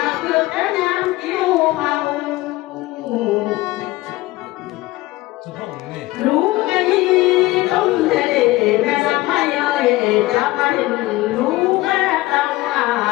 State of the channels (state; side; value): quieter; right; 19.1 dB